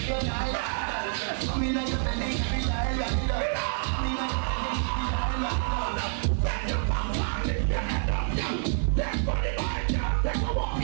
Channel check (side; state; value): left; silent; 60 dB below the other